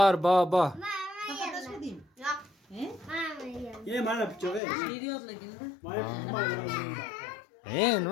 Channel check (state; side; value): drops out; right; at 4.6 s